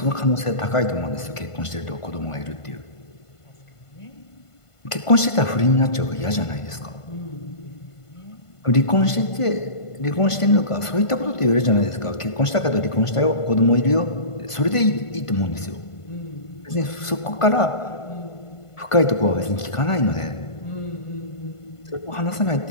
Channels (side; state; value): right; late; 1.5 ms